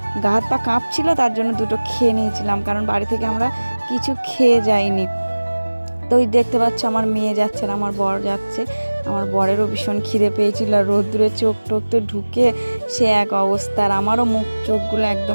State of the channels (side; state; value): both; inverted; correlation -1.00